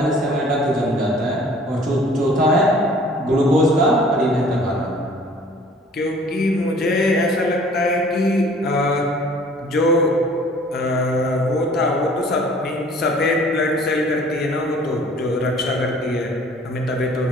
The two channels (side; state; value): both; normal; correlation 0.52